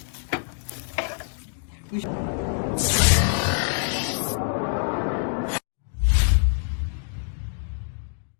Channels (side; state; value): right; silent; digital silence